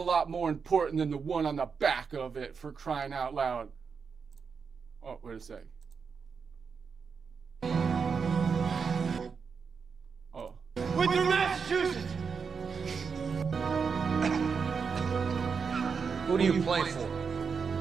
more important than the one on the back of it, for crying out loud. Oh, wait a sec. Oh. With your Massachusetts! Who do you play for?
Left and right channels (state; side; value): quieter; left; 5.8 dB